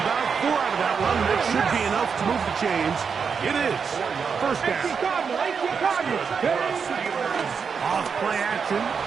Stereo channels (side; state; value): left; quieter; 6.1 dB